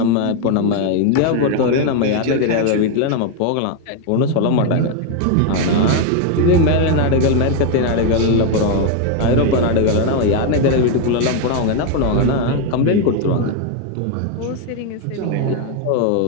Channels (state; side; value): different; both; correlation 0.01